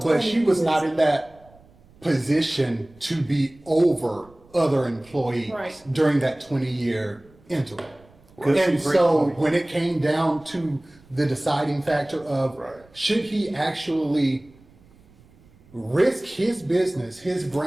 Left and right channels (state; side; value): noise; right; rumble, 28 dB below the sound